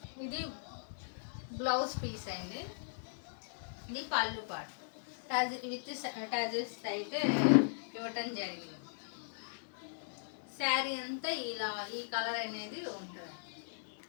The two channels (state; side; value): silent; right; digital silence